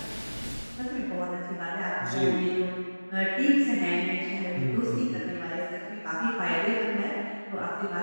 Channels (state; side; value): inverted; both; correlation -1.00